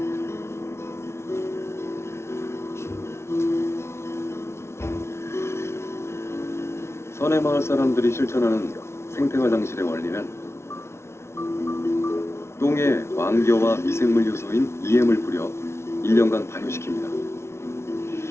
선의 마을 사람들이 실천하는 생태화장실의 원리는 똥에 왕겨와 미생물 요소인 EM을 뿌려 1년간 발효시킵니다.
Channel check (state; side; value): late; right; 0.13 ms